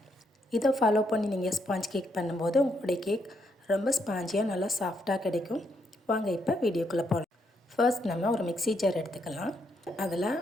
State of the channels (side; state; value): both; normal; correlation 0.76